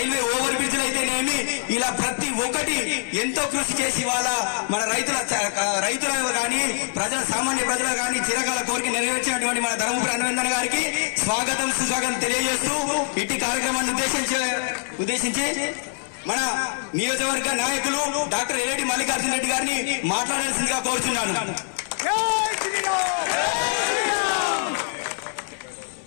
ఓవర్ బ్రిడ్జ్లు అయితేనేమి ఇలా ప్రతి ఒక్కటి ఎంతో కృషి చేసి ఇవాళ మన రైతుల కానీ సామాన్య ప్రజలు కానీ చిరకాల కోరిక నెరవేర్చినటువంటి మన ధర్మపురి అరవింద్ అన్న గారికి స్వాగతం సుస్వాగతం తెలియజేస్తూ ఇట్టి కార్యక్రమాన్ని ఉద్దేశించి మన నియోజకవర్గ నాయకులు డాక్టర్ ఏలేటి మల్లికార్జున్ రెడ్డి గారిని మాట్లాడాల్సిందిగా కోరుచున్నాను.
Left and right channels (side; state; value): right; silent; 63 dB below the other